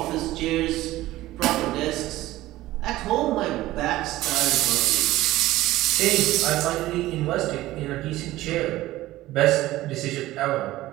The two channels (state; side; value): quieter; left; 16.5 dB